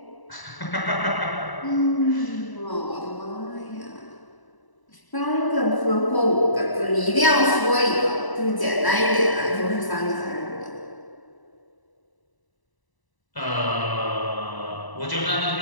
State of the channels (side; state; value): right; late; 1.0 ms